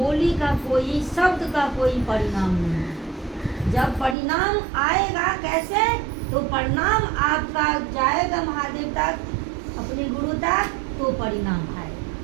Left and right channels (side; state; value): left; drops out; at 4.2 s